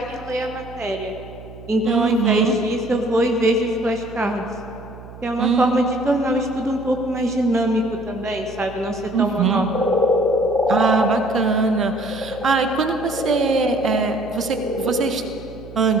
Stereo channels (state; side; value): noise; right; hum, 17 dB below the sound